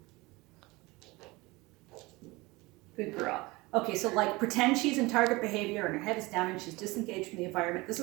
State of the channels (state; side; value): quieter; left; 22.7 dB